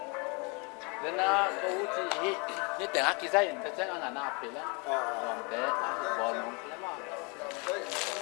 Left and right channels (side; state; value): right; quieter; 31.9 dB